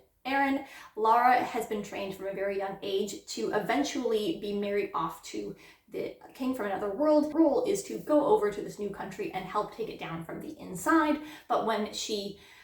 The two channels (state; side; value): identical; both; correlation 1.00